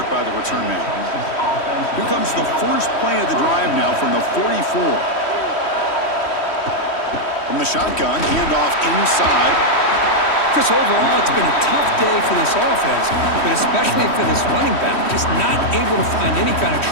by the return man. Here comes the first play of the drive now from the 44. From the shotgun, handoff inside. Chris, overall, it's been a tough day for this offense, but especially for this running back, just not able to find any kind of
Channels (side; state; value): right; late; 3.1 ms